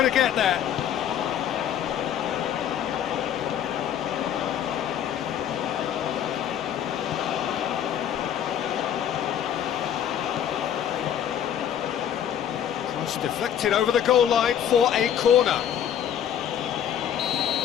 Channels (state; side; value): quieter; right; 9.6 dB